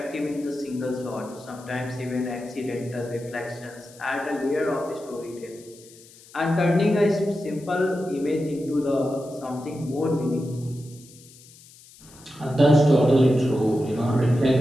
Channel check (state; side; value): noise; left; hiss, 23 dB below the sound